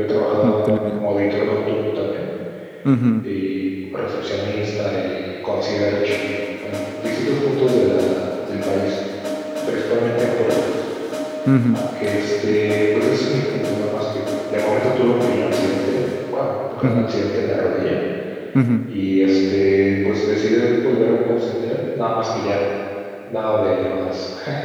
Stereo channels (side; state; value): both; identical; correlation 1.00